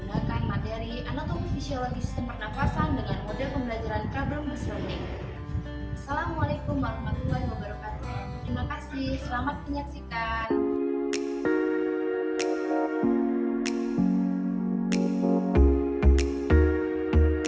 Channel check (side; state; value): both; identical; correlation 1.00